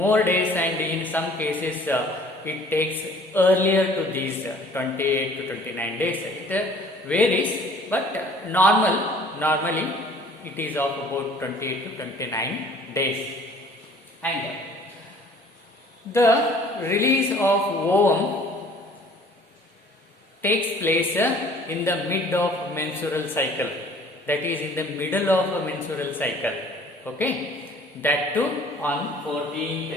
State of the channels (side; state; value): both; normal; correlation 0.52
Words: days, and in some cases it takes earlier to these 28 to 29 days. It varies, but normally it is of about 28 to 29 days. And the release of ovum takes place in the mid of menstrual cycle, that is in the middle of a menstrual cycle, okay, that too on